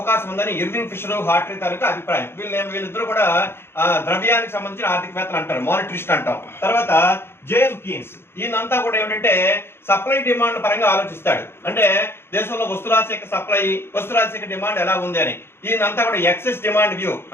ఉందని ఇర్వింగ్ ఫిషర్, హార్ట్రీ తాలూకా అభిప్రాయం. వీళ్ళిద్దరూ కూడా ద్రవ్యానికి సంబంధించిన ఆర్థికవేత్తలు అంటారు, మానిటరిస్ట్ అంటాం. తర్వాత జేఎం కీన్స్, ఈయనంతా కూడా ఏమిటంటే సప్లై డిమాండ్ పరంగా ఆలోచిస్తాడు. అంటే దేశంలో వస్తురాశి యొక్క సప్లై, వస్తురాశి యొక్క డిమాండ్ ఎలా ఉంది అని. ఈయనంతా కూడా ఎక్సెస్ డిమాండ్ వ్యూ,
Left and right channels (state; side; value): late; right; 0.11 ms